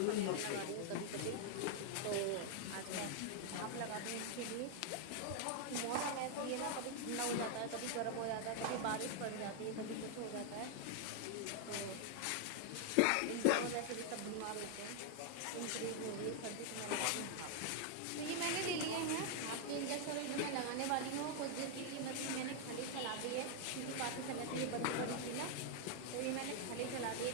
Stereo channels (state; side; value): different; both; correlation 0.00